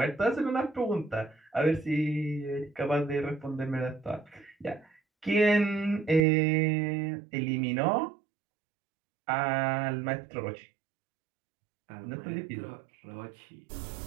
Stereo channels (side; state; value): left; drops out; at 6.2 s